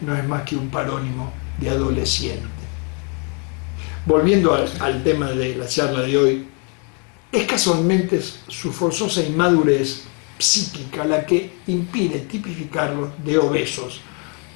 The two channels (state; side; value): quieter; right; 37.0 dB